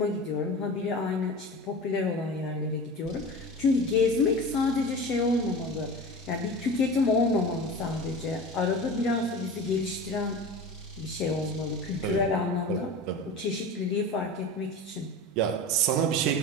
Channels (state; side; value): normal; both; correlation 0.32